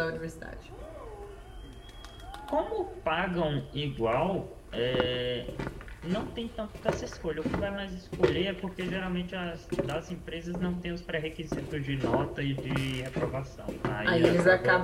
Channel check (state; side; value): identical; both; correlation 1.00